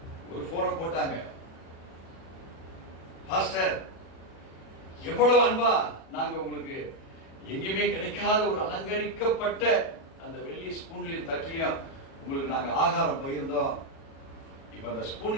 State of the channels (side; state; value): right; late; 37 ms